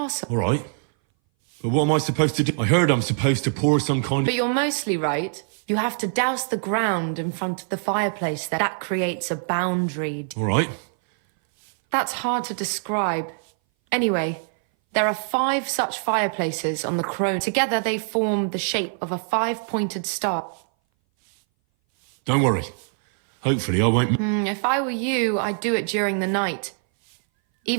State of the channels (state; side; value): silent; left; 59 dB below the other